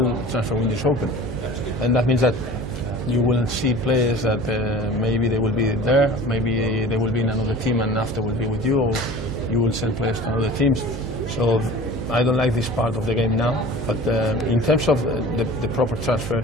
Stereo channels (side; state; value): right; noise; hum, 8 dB below the sound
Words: the transfer window is open. And that means that you will see players that maybe they will be there, maybe they will be in another team and after will be with you, or you will send players to other teams. So I don't like this part of the game now. But in terms of the proper transfer